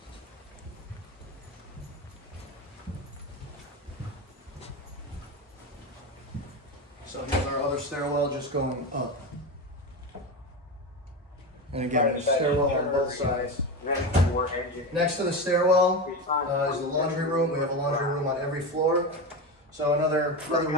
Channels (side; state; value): both; normal; correlation 0.20